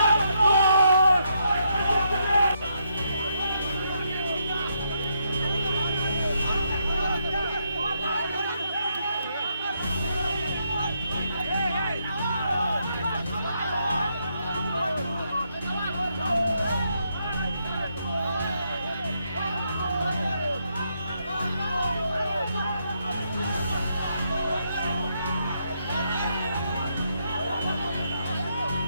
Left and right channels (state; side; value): inverted; both; correlation -0.78